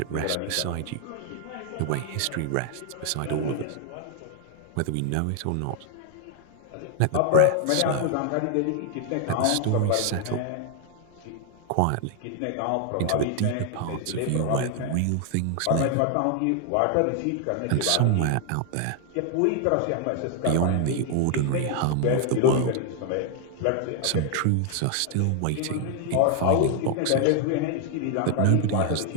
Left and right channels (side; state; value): both; different; correlation 0.00